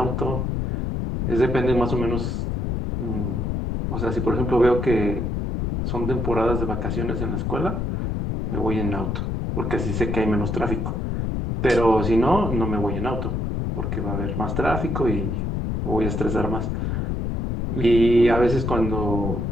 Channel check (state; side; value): noise; left; rumble, 1 dB below the sound